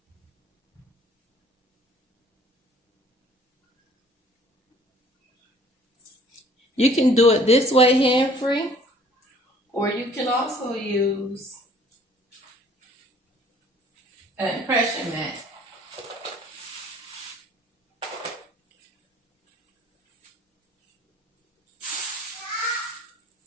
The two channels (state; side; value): normal; both; correlation 0.55